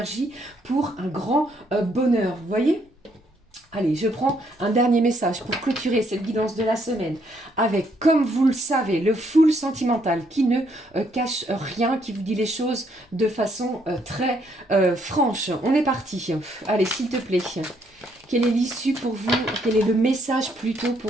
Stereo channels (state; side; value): normal; both; correlation 0.71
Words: pour un grand bonheur. Vous voyez ? Allez, je prends un dernier message pour clôturer cette guidance de la semaine avec, comme vous le savez, le full sentimental qui ne cache rien, qui vous dit les choses de façon très franche. On est parti. Allez, s'il te plaît. Quelle est l'issue pour vous? Quel est le message plutôt